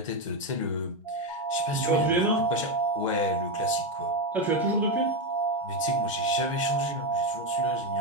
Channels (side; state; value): both; normal; correlation 0.10